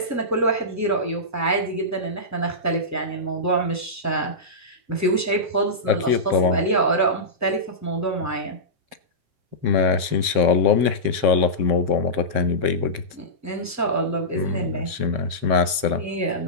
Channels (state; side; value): late; left; 7.6 ms